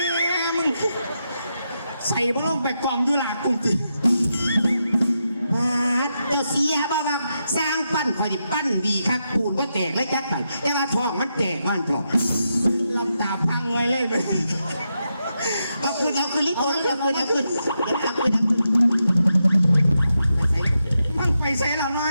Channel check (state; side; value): inverted; both; correlation -0.85